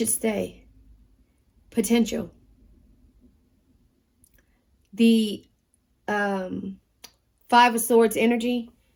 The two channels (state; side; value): identical; both; correlation 1.00